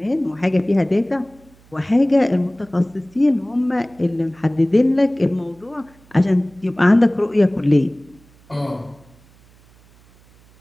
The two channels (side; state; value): right; noise; hum, 29 dB below the sound